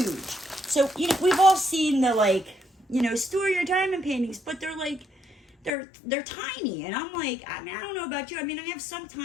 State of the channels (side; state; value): right; drops out; at 5.7 s